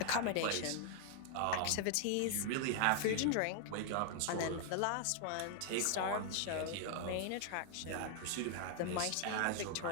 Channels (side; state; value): both; different; correlation 0.00